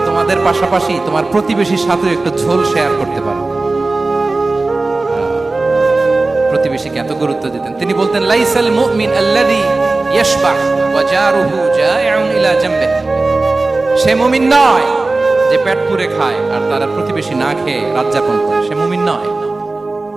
তোমাদের পাশাপাশি তোমার প্রতিবেশীর সাথে একটু ঝোল শেয়ার করতে পারো। প্রতিবেশীকে এত গুরুত্ব দিতেন। তিনি বলতেন, লাইসাল মুমিন আল্লাযী ইয়াশবাহ ওয়া জারুহু জাইউন ইলা জামবিহি, সে মুমিন নয় যে পেট পুরে খায় আর তার প্রতিবেশী না খেয়ে রাত যাপন করে, সে মুমিন নয়।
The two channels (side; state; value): left; quieter; 3.3 dB